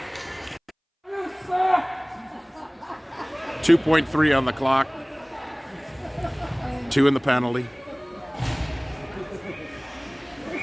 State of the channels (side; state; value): both; identical; correlation 1.00